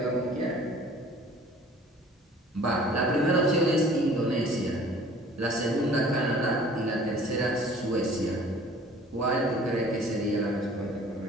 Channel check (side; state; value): both; normal; correlation 0.50